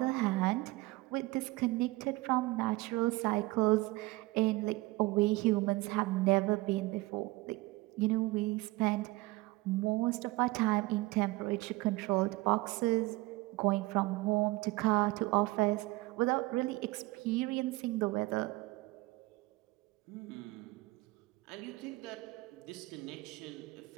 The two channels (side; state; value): left; quieter; 21.0 dB